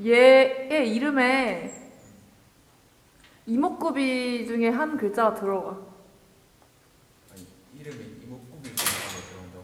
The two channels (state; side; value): identical; both; correlation 1.00